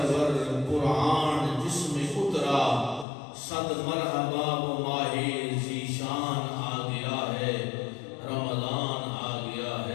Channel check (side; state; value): right; drops out; at 3.1 s